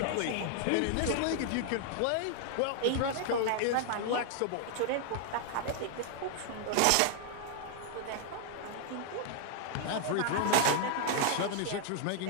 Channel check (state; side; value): different; both; correlation 0.00